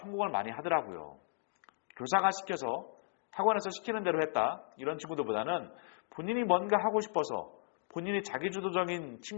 많이 하더라고요. 교사가 시켜서 학원에서 시키는 대로 했다. 이런 친구들보다는 본인이 뭔가 하고 싶어서 본인이 자기주도적인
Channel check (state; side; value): silent; right; digital silence